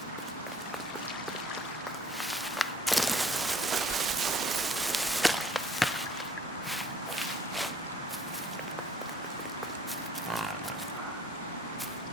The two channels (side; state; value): both; normal; correlation 0.58